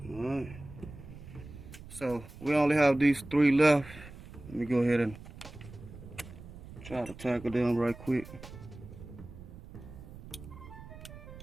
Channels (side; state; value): right; noise; rumble, 15 dB below the sound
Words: Alright. So we only have these three left. Let me go ahead and try to tackle them right quick.